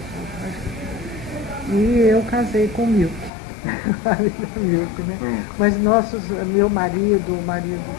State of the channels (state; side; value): drops out; right; at 3.3 s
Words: E eu casei com o Milk. Milk, né? Mas meu marido, o marido